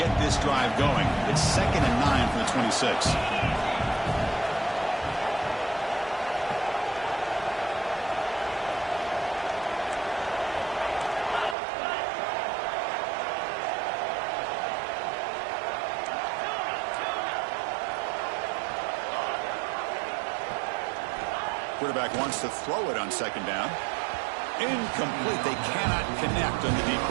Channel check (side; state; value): left; drops out; at 11.6 s